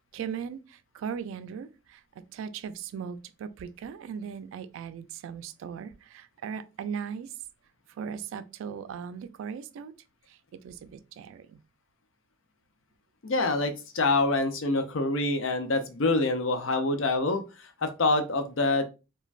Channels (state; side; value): normal; both; correlation -0.12